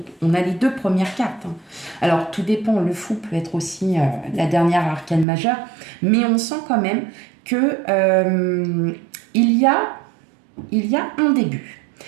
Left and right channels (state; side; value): drops out; left; at 5.2 s